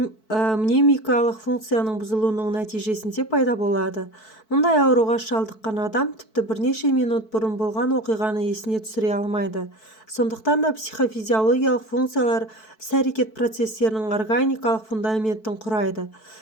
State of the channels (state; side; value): late; right; 4.6 ms